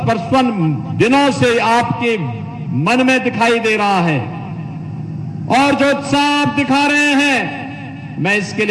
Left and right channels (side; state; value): both; identical; correlation 1.00